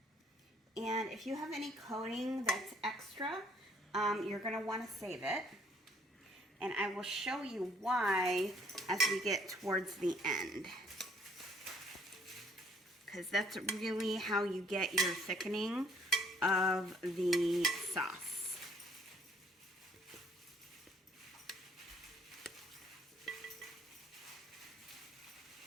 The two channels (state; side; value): normal; both; correlation 0.62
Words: And if you have any coating that's extra, you're going to want to save it. And I will show you why as we get towards the end, because that's really how you get your thickening of the sauce.